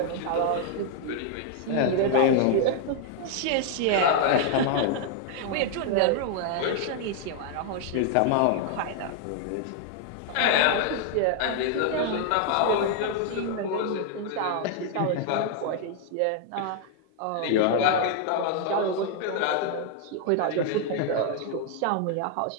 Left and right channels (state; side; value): different; both; correlation 0.00